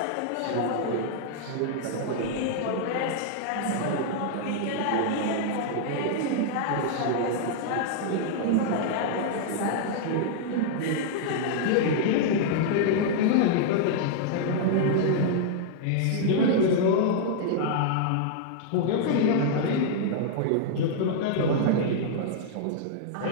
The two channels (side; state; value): both; different; correlation -0.01